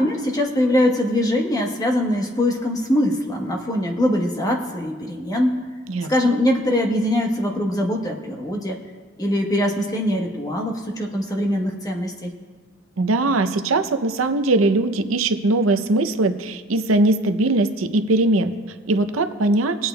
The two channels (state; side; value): normal; both; correlation 0.54